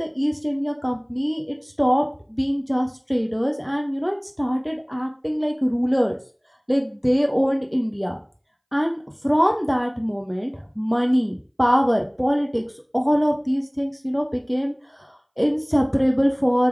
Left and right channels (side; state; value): both; identical; correlation 1.00